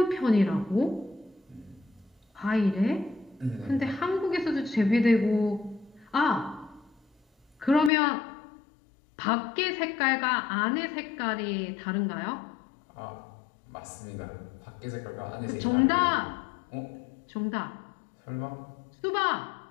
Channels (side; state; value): right; drops out; at 7.9 s